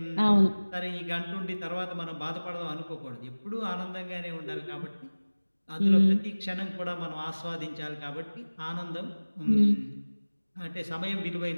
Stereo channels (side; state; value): both; inverted; correlation -1.00